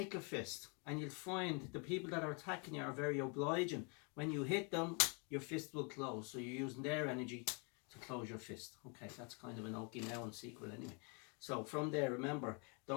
a fist, and you'll find the people that are attacking you are very obliging. When you hit them, your fist will close, so you're using their energy to close your fist. Okay, that's kind of an Okinawan secret anyway. So from there, remember,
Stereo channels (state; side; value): quieter; right; 35.3 dB